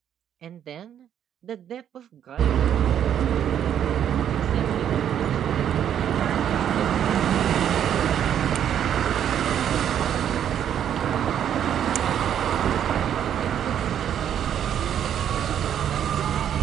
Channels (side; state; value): left; quieter; 9.6 dB